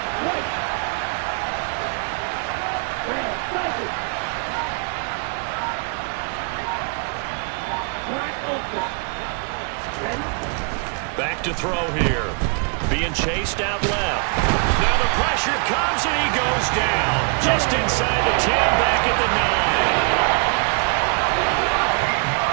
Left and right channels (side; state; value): left; quieter; 39.1 dB